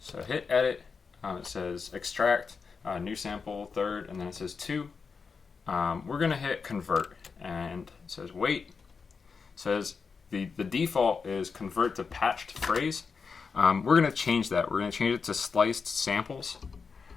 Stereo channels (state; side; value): quieter; right; 5.3 dB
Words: hit edit, it says extract, new sample, third, and then it says 2. We're going to hit convert, and it says wait. It says the default is convert to patched phrase. We're going to change that. We're going to change it to sliced samples.